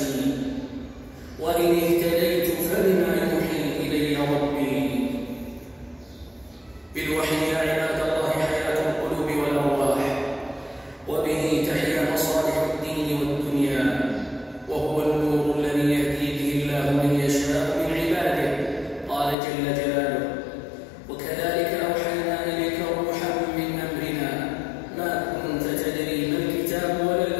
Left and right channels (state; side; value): drops out; right; at 19.4 s